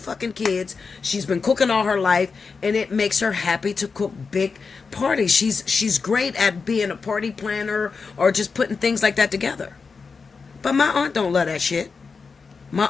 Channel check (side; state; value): right; quieter; 4.9 dB